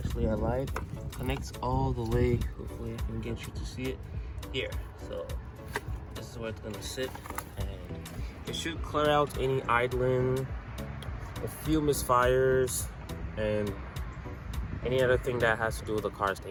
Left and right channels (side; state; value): both; identical; correlation 1.00